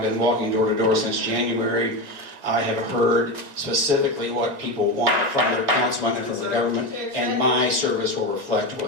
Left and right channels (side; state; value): left; late; 1.9 ms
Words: been walking door to door since January, I have heard specifically what people want from their councilman and from the government, and my service will reflect